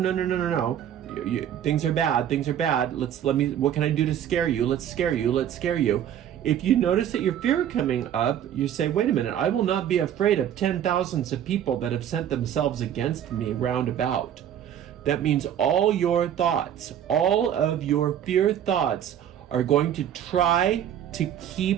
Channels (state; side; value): quieter; left; 10.1 dB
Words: Things are bad. What can I do to scare you? Let's scare you. If you notice that your fear coming up, you say, wait a minute, I will not be afraid of 10,000s of people that have sent themselves against me round about. That means all your thoughts, all of your fear thoughts are going to try to